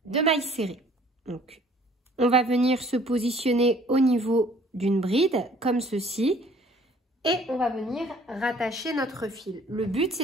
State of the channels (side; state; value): both; normal; correlation 0.56